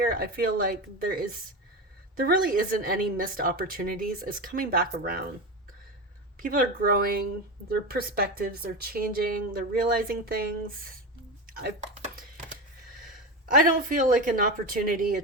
I feel like there really isn't any missed opportunities. It's coming back around. People are growing, their perspectives are changing, they're realizing things. I don't feel like an opportunity, a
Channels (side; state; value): both; normal; correlation 0.20